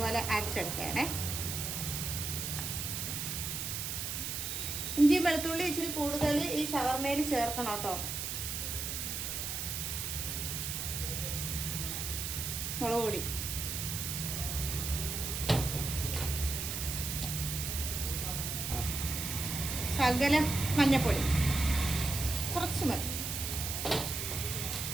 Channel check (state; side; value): noise; right; hiss, 3 dB below the sound